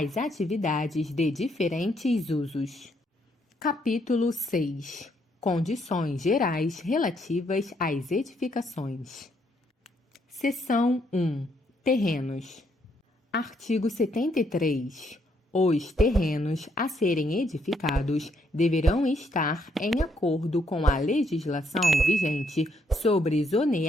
atividades de diferentes usos. Capítulo 6. Condições gerais relativas às edificações. Seção 1. Terrenos. Artigo 73. Os terrenos a serem edificados deverão estar em acordo com a legislação vigente sobre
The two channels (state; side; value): normal; both; correlation 0.73